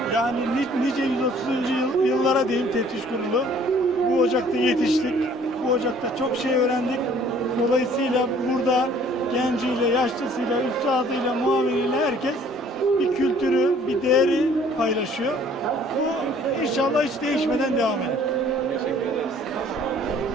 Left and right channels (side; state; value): both; normal; correlation 0.56